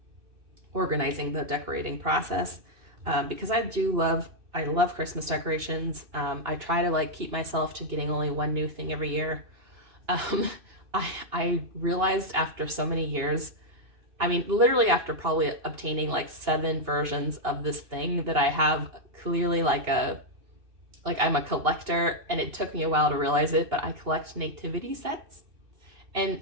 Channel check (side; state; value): left; late; 2.9 ms